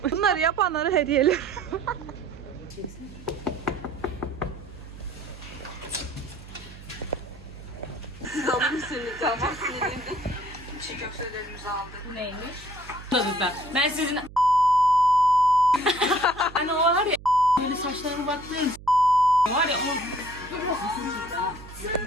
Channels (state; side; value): noise; right; hum, 17 dB below the sound